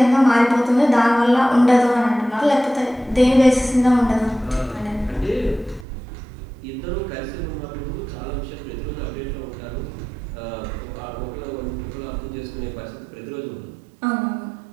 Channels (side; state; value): left; drops out; at 5.9 s